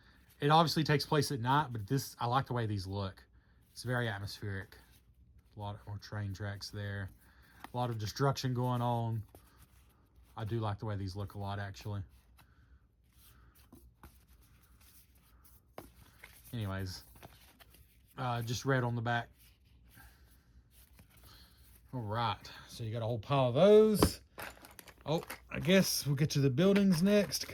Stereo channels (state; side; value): identical; both; correlation 1.00